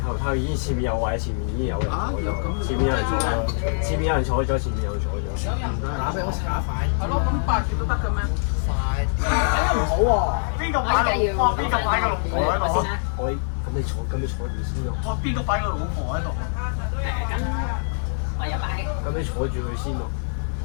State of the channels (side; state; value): right; silent; digital silence